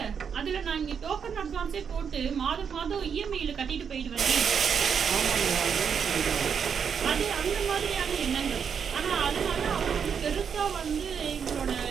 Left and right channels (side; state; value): left; quieter; 7.0 dB